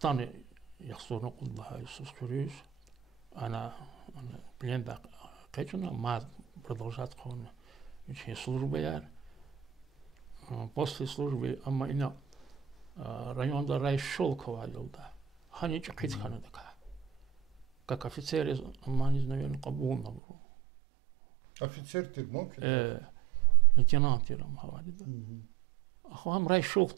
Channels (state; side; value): drops out; left; at 20.2 s